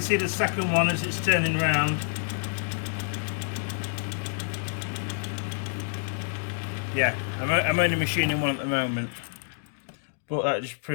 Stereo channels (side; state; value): right; silent; digital silence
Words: see the second one as it's turning round. Yeah, I'm only machining one at the moment, but that just